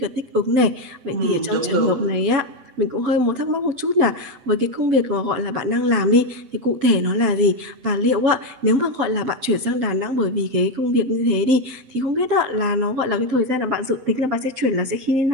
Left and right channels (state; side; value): late; left; 7.8 ms